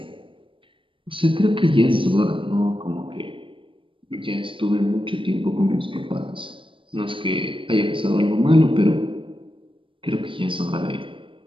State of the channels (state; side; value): late; left; 0.25 ms